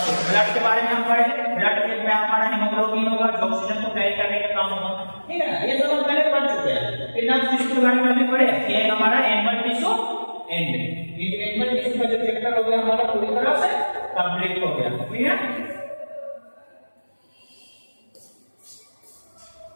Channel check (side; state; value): both; inverted; correlation -1.00